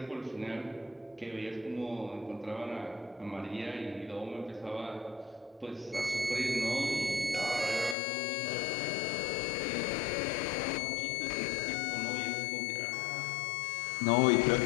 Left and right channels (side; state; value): right; drops out; at 8.0 s